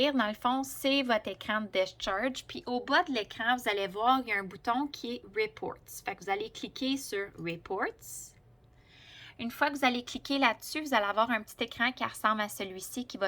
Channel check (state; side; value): identical; both; correlation 1.00